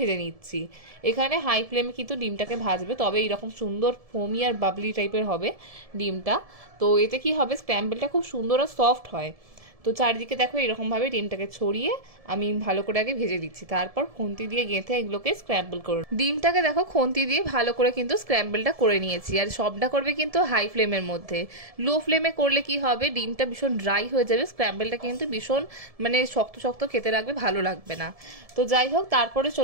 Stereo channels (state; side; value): late; left; 1.7 ms